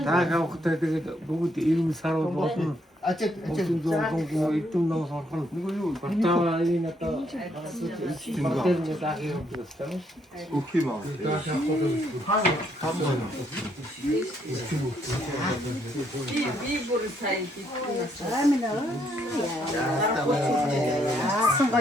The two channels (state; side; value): normal; both; correlation 0.72